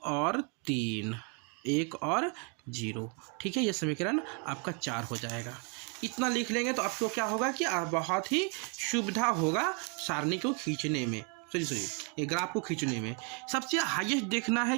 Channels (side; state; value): left; quieter; 36.5 dB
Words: और 3, 1 और 0, ठीक है, ये समीकरण आपका 4 हो जाएगा। इतना लिख लेंगे तो आपको क्या होगा कि बहुत ही सुविधा होगा सारणी को खींचने में, ये ग्राफ को खींचने में। सबसे हाईएस्ट देखना है